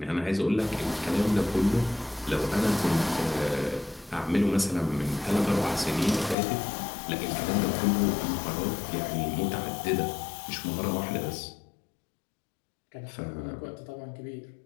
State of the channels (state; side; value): drops out; right; at 6.4 s